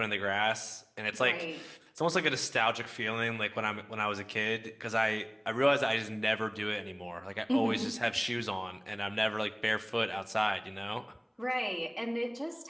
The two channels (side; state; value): both; identical; correlation 1.00